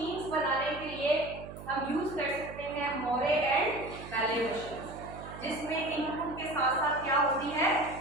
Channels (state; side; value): noise; right; hum, 13 dB below the sound